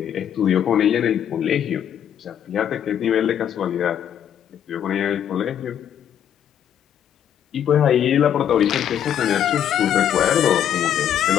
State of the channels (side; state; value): right; quieter; 9.6 dB